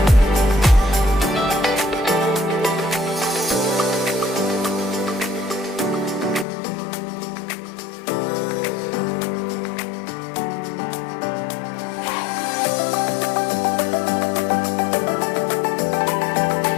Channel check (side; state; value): right; drops out; at 6.5 s